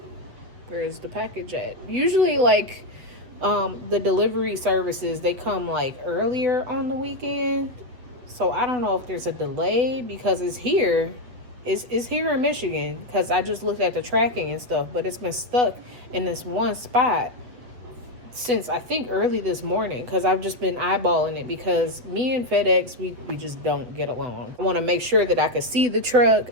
where's the package at? Usually like the delivery services, they come like earlier on the weekend. So I don't know if there's a delay because it's here. It's here in Michigan, because I just looked at the tracking and stuff, but it's been stuck in this one spot since I think early this morning, because I've just been eyeballing it, because me and FedEx, we just don't get along. I want to make sure that I can see the truck.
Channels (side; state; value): left; late; 8.1 ms